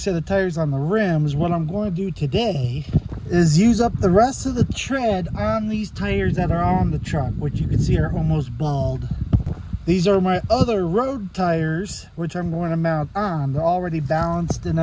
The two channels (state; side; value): identical; both; correlation 1.00